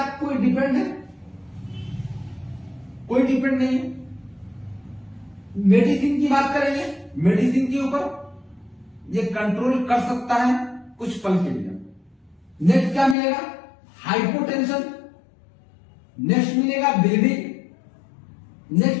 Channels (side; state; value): right; drops out; at 13.2 s